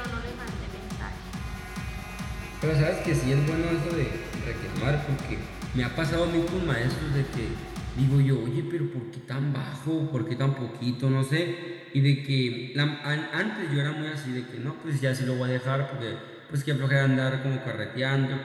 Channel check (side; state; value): both; identical; correlation 1.00